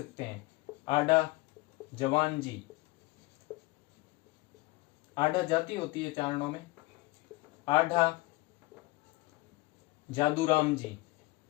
हैं। आढ़ा जवान जी, आढ़ा जाति होती है चारणों में। आढ़ा जादूराम जी,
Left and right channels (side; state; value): right; quieter; 22.1 dB